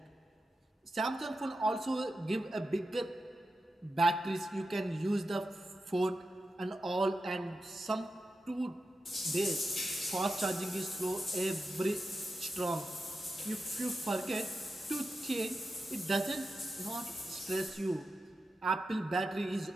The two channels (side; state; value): both; normal; correlation 0.90